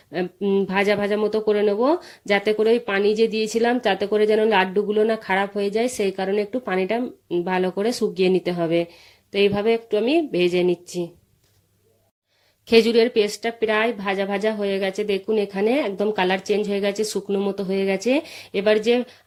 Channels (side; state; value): both; identical; correlation 1.00